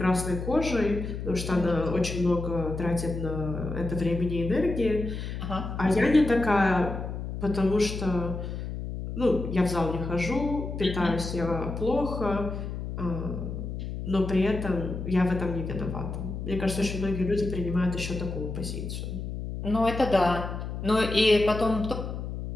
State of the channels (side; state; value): left; noise; hum, 6 dB below the sound